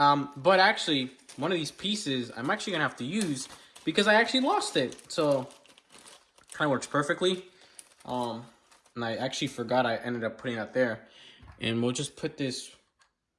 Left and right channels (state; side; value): identical; both; correlation 1.00